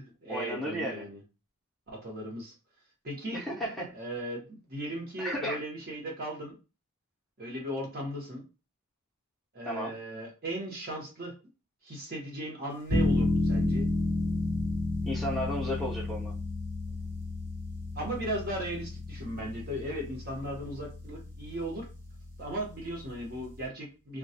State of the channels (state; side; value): normal; both; correlation 0.63